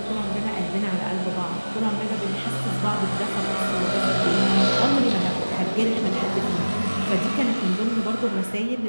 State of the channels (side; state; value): both; inverted; correlation -1.00